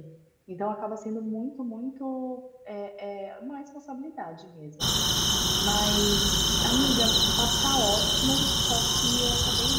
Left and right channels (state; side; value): identical; both; correlation 1.00